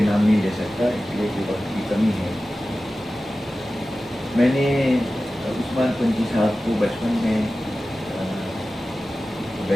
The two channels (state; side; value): normal; both; correlation 0.95